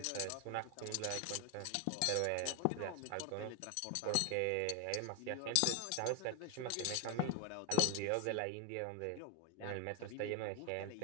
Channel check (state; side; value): different; both; correlation 0.01